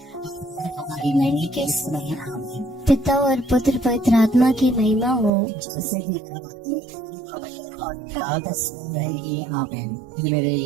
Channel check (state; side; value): drops out; left; at 5.3 s